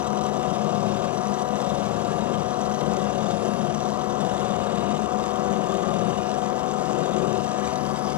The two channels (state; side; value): quieter; right; 16.1 dB